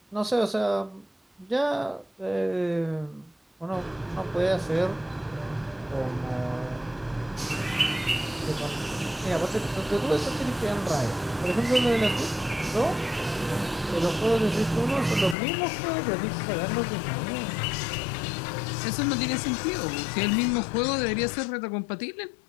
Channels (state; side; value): drops out; right; at 15.4 s